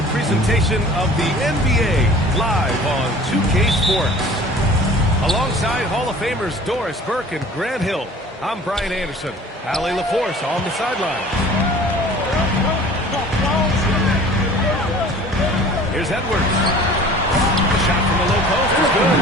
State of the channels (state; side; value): normal; both; correlation 0.46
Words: presentation of the NBA live on 2K Sports. Alongside Hall of Famers Doris Burke and Grant Hill, I'm Brian Anderson. Allie LaForce on the sidelines. Here's Edwards. The shot from the low post is good.